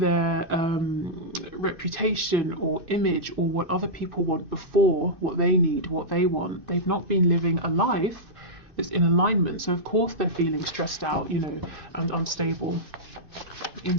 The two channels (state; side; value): late; left; 2.6 ms